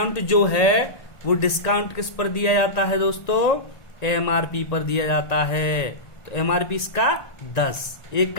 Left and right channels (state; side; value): late; right; 1.9 ms